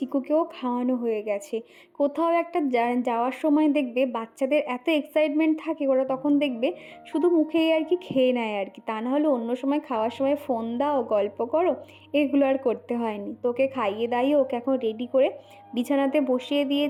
খাওয়ানো হয়ে গেছে। কোথাও একটা যাওয়ার সময় দেখবে বাচ্চাদের এত এক্সাইটমেন্ট থাকে, ওরা তখন দেখবে শুধু মুখেই আর কি খেয়ে নেয় আর কি, তা না হলে অন্য সময় খাওয়ার সময় ফোন দাও, গল্প করো, এগুলো আর করতে হয়নি। তোকে খাইয়ে দাইয়ে ওকে এখন রেডি করে বিছানাতে বসিয়ে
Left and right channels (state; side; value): identical; both; correlation 1.00